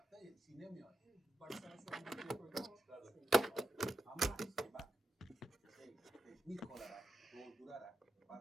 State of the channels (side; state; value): both; normal; correlation 0.87